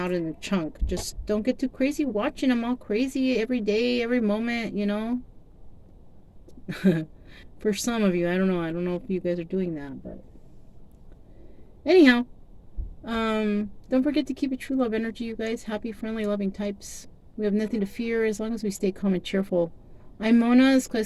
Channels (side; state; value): both; identical; correlation 1.00